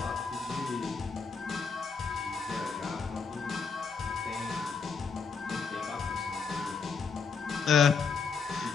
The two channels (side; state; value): right; quieter; 5.5 dB